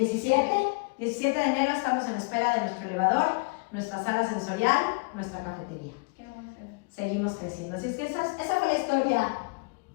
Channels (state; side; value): quieter; right; 30.5 dB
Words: 17 de enero estamos en espera de nuestro elevador, nuestra sala sensorial, nuestra cafetería. Qué bonito. Seguimos creciendo. Así es que esa fue la historia,